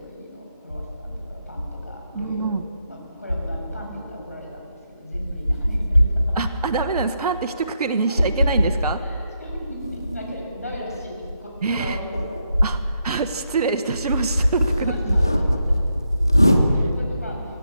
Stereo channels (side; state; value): both; inverted; correlation -0.81